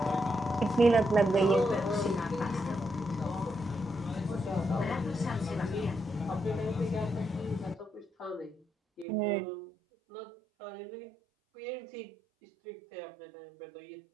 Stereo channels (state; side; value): drops out; left; at 9.1 s